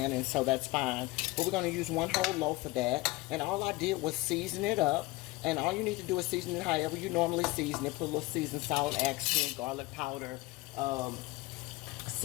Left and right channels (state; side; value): quieter; right; 21.1 dB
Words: and so that's fine. But we're going to use 1 whole loaf of that, and all I did was season it up. And all you need to do is season it however you normally season it. Put a little seasoned salt, accent, garlic powder,